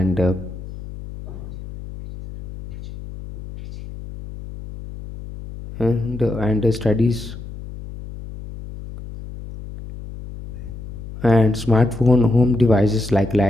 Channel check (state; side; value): noise; left; hum, 12 dB below the sound